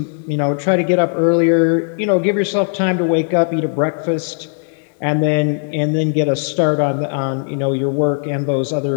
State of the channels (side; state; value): right; silent; 56 dB below the other